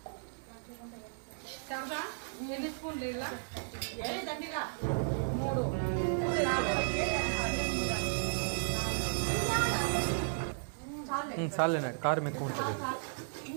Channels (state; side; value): silent; left; digital silence